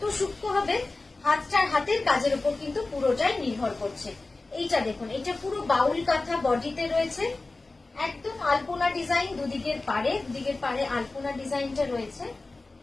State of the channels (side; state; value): right; quieter; 3.3 dB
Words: সূক্ষ্ম হবে হাতের কাজের উপর কিন্তু পুরোটাই নির্ভর করছে। এইটা দেখুন, এটা পুরো বাউল কাঁথা বডিতে রয়েছে, একদম আলপনা ডিজাইন, দুদিকের পাড়ে আলপনা ডিজাইনটা রয়েছে।